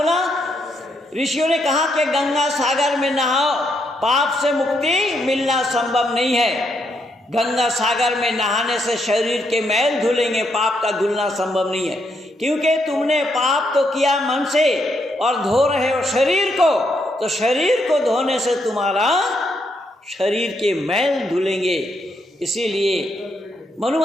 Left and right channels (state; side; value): normal; both; correlation 0.77